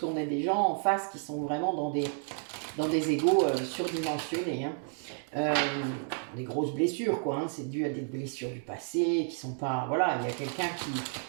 a des gens en face qui sont vraiment dans des égos surdimensionnés. Hein. Des grosses blessures, quoi. Hein. C'est dû à des blessures du passé qui sont pas. Voilà, il y a quelqu'un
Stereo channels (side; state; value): left; silent; 55 dB below the other